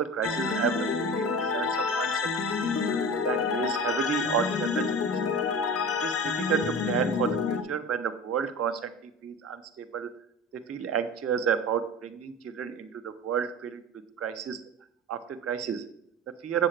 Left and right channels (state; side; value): normal; both; correlation 0.33